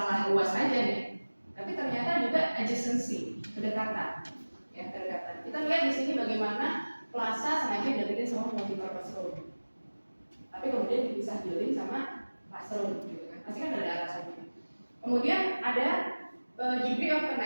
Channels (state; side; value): inverted; both; correlation -1.00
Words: luas aja nih, tapi ternyata juga adjacency, kedekatan. Ya, kedekatan. Kita lihat di sini bagaimana plaza sengaja dibikin sama multi-purpose room. Tapi kemudian dipisah building sama classroom gitu kan. Pasti kan ada alasannya. Kemudian ada degree of